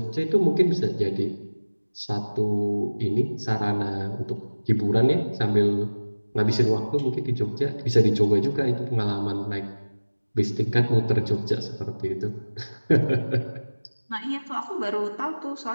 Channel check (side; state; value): both; inverted; correlation -1.00